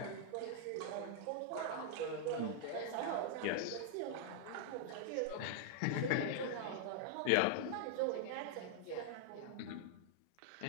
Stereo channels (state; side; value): different; both; correlation -0.01